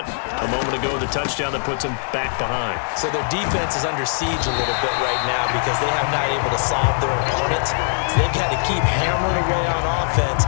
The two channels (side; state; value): right; silent; 65 dB below the other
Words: a moment ago, the touchdown that puts them back behind. So their defense is under siege a little bit right now because they have not able to solve their opponents. So they've got to keep hammering away on offense